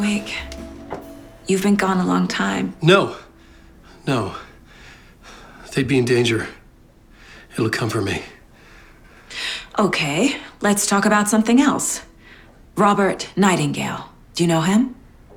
You've been gone a long time. No. No. They'd be in danger. It'll come for me. Okay, let's talk about something else. Robert Nightingale. Do you know him?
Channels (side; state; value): both; identical; correlation 1.00